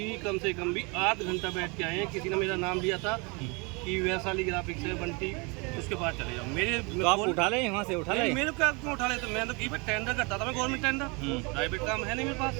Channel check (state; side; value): quieter; left; 29.4 dB